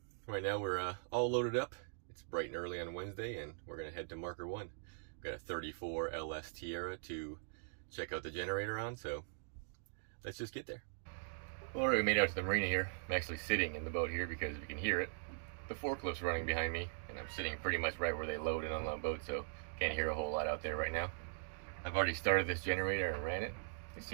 Right now we're all loaded up. It's bright and early on Wednesday, and we're gonna head to Marker 1. We've got a 34 LS Tiara to check out the generator on, so let's just get there. Well, we made it out to the marina here. I'm actually sitting in the boat here because you can hear it. The forklift's running behind me, and I'm sitting pretty much right where they load and unload boats, so can't hear a whole lot out there right now. I've already started this generator and ran it. It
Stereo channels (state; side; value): silent; left; digital silence